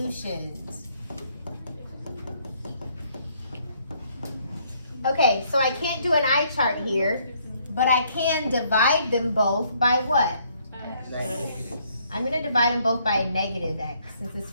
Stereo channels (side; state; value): both; inverted; correlation -0.68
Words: Okay, so I can't do an eye chart here, but I can divide them both by what? Negative. I'm going to divide them both by a negative x, since this